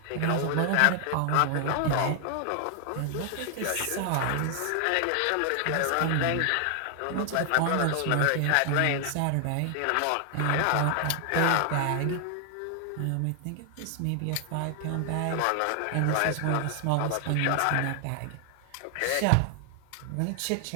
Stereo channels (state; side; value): different; both; correlation 0.00